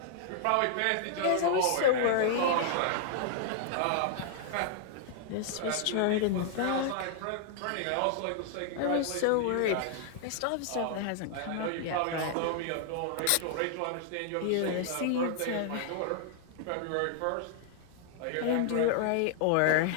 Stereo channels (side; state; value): both; different; correlation -0.01